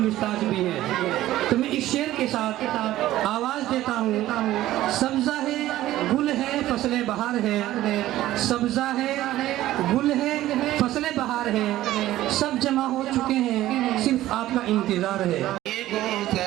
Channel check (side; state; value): left; quieter; 14.8 dB